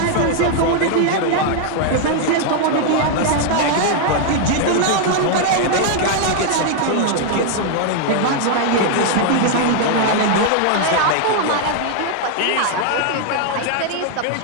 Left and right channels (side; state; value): both; different; correlation 0.00